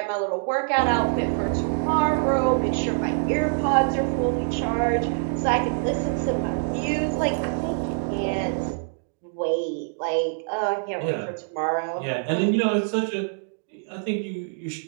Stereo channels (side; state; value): left; silent; digital silence